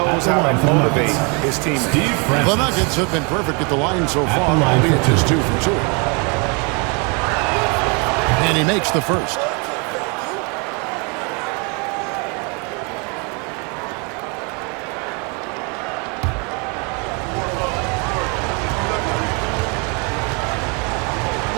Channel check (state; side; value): quieter; left; 33.0 dB